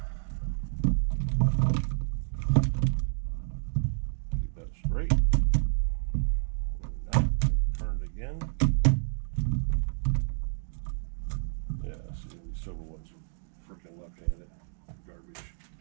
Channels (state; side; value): silent; left; digital silence